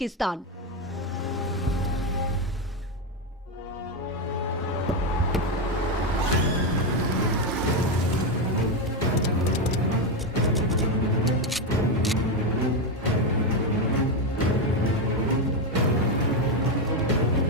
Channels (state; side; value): normal; both; correlation 0.08